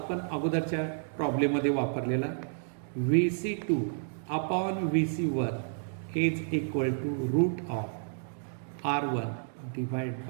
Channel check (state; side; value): silent; left; digital silence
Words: अगोदरच्या प्रॉब्लेममध्ये वापरलेला. VC2 upon VC1 is equal to root of R1 divide